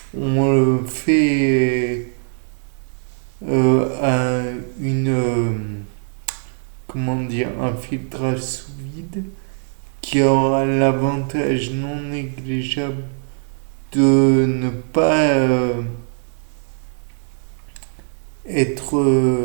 On le fait à comment dire, un filtrage sous vide qui aura l'avantage non négligeable de ne pas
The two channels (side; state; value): left; silent; 65 dB below the other